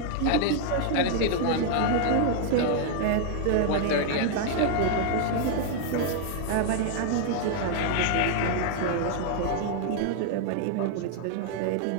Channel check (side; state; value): both; different; correlation 0.00